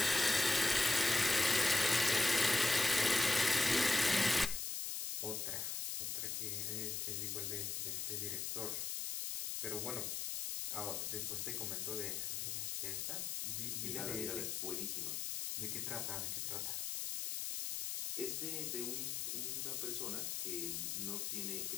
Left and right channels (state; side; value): noise; left; hiss, 2 dB below the sound